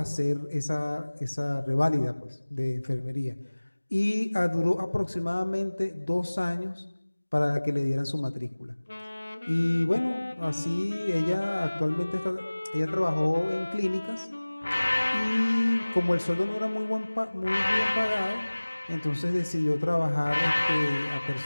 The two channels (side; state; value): both; inverted; correlation -1.00